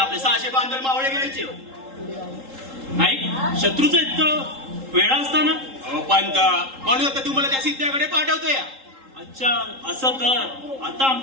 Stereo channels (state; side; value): late; left; 3.8 ms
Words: 600 बांधल मावळे घ्यायचे. नाही, शत्रूचं इतकं वेळा असताना. अहो पंत, म्हणून आता तुम्हाला त्या सिद्ध्याकडे पाठवतोय. अच्छा, असं तर आता